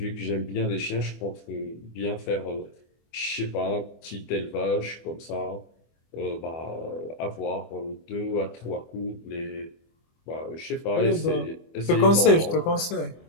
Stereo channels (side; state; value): right; late; 24 ms